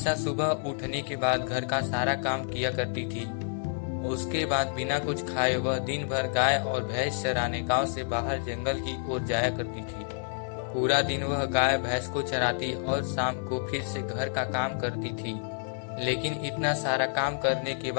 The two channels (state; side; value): silent; right; 59 dB below the other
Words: सुबह उठने के बाद घर का सारा काम किया करती थी। उसके बाद बिना कुछ खाए वह दिन भर गाय और भैंस चराने गांव से बाहर जंगल की ओर जाया करती थी। पूरा दिन वह गाय भैंस को चराती और शाम को फिर से घर का काम करती थी। लेकिन इतना सारा काम करने के